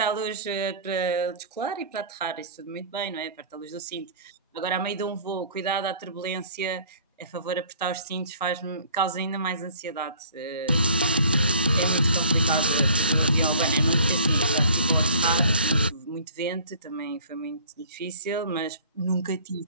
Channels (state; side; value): inverted; both; correlation -0.51